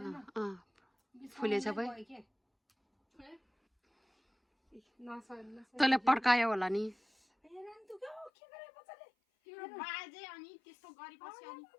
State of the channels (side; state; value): right; drops out; at 8.3 s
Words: फुलेछ भाइ तँले पड्कायो होला नि